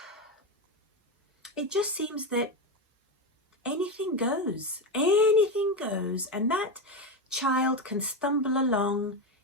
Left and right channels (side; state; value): both; normal; correlation 0.14